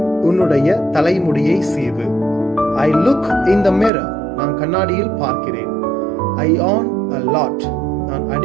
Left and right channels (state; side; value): drops out; left; at 3.9 s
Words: உன்னுடைய தலைமுடியை சீவு. I look in the mirror. நான் கண்ணாடியில் பார்க்கிறேன். I yawn a lot. நான்